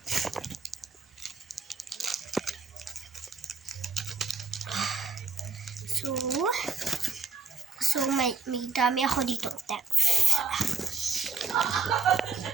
So may dami ako dito text.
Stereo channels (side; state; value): left; quieter; 4.5 dB